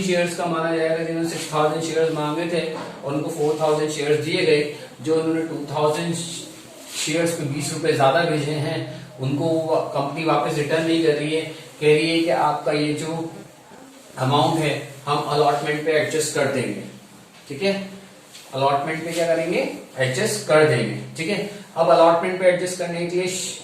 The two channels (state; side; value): identical; both; correlation 1.00